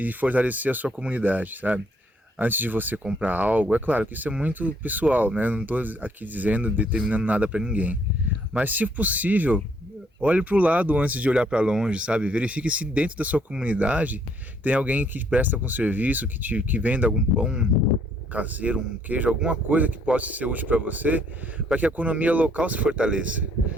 fortalecer a sua comunidade, sabe? Antes de você comprar algo, é claro que isso é muito pessoal, né? Não estou aqui dizendo, determinando nada para ninguém. Mas se possível, olhe para o lado antes de olhar para longe, sabe? Verifique se dentro da sua comunidade tem alguém que presta com serviço, que venda algum pão caseiro, um queijo, alguma coisa que possa ser útil para você, para que a economia local se fortaleça.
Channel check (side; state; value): both; normal; correlation 0.66